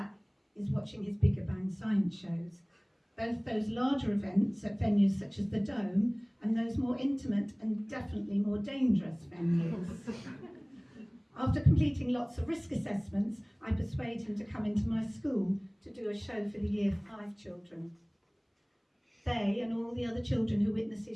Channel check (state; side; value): identical; both; correlation 1.00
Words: is watching his Bigger Bang science shows, both those larger events at venues such as the Dome and those more intimate and definitely more dangerous venues. After completing lots of risk assessments, I persuade him to come into my school to do a show for the Year 5 children. They and all the other children who witness